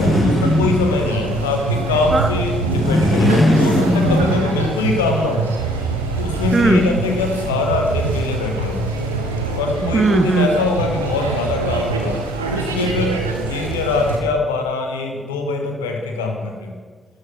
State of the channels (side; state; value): both; normal; correlation 0.57